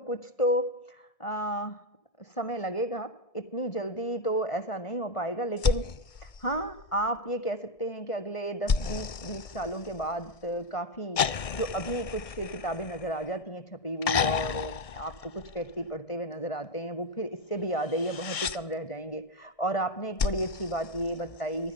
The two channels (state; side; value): late; right; 1.6 ms